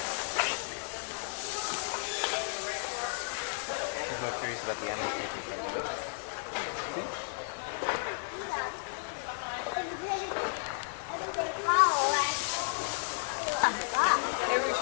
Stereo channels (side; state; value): right; silent; digital silence